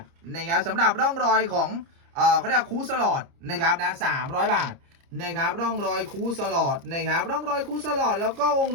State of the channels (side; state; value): left; late; 30 ms